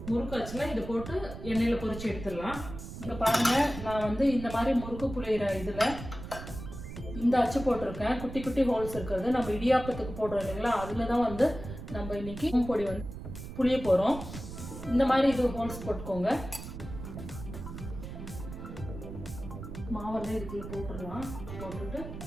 முறுக்கு அச்சுல இதை போட்டு எண்ணெயில் பொரிச்சு எடுத்துடலாம். இங்கே பாருங்க, நான் இந்த மாதிரி முறுக்கு புளியிற இதில் இந்த அச்சு போட்டிருக்கேன். குட்டி குட்டி ஹோல்ஸ் இருக்கிறது நம்ம இடியாப்பத்துக்கு போடுறோம் இல்லைங்களா, அதில் தான் நம்ம இன்னைக்கு பொடி புளிய போகிறோம். இந்த மாதிரி இது ஹோல்ஸ் போட்டுக்கோங்க. மாவெல்லாம் இதுக்குள்ள போட்டுடலாம். போட்டுட்டு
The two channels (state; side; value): noise; right; rumble, 10 dB below the sound